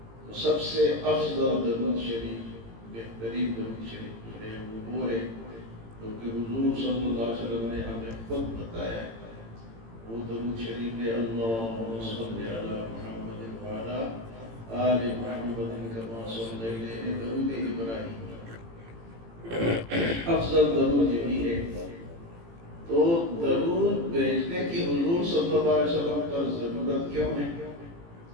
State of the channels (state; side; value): late; left; 18 ms